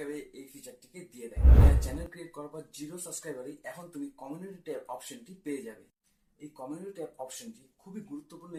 এই ফিচারটিকে দিয়ে দেয়। চ্যানেল ক্রিয়েট করার পর 0 সাবস্ক্রাইবারে এখন তুমি কমিউনিটি ট্যাব অপশনটি পেয়ে যাবে। এই কমিউনিটি ট্যাব অপশনটি খুবই গুরুত্বপূর্ণ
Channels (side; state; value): both; identical; correlation 1.00